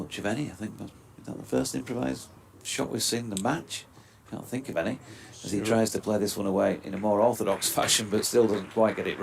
of any, I think. Is that the first improvised shot we've seen in the match? Can't think of any. As he tries to play this one away in a more orthodox fashion, but still doesn't quite get it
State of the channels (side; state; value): both; identical; correlation 1.00